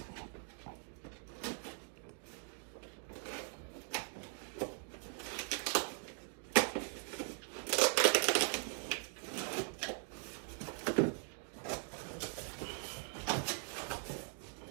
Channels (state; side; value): silent; left; 51 dB below the other